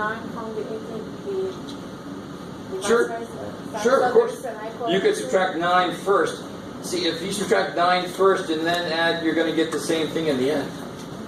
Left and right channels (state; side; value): identical; both; correlation 1.00